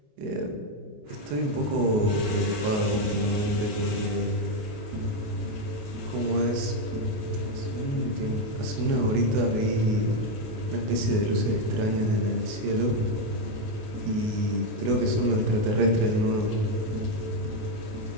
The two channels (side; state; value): left; late; 28 ms